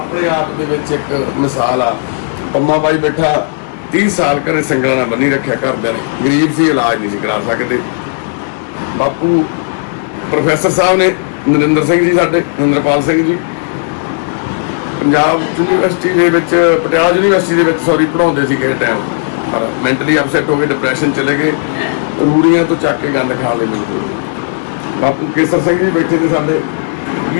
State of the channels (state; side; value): silent; right; 71 dB below the other